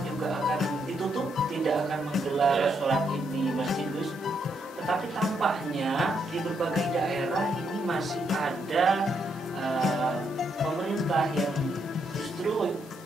juga akan ditutup, tidak akan menggelar sholat id di masjid, Gus. Tetapi tampaknya di berbagai daerah ini masih ada pemerintah yang justru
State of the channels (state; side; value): normal; both; correlation 0.77